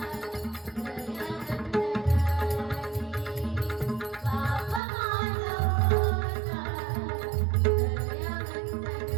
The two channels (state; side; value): drops out; left; at 4.8 s